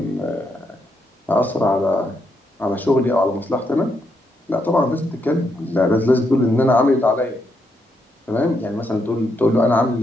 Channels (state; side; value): normal; both; correlation 0.79